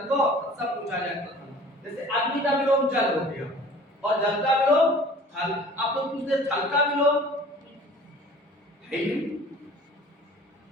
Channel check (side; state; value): both; normal; correlation 0.47